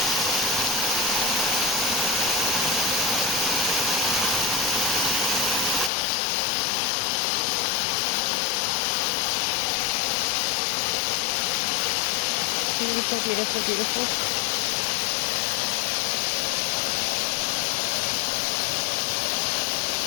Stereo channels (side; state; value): right; drops out; at 5.9 s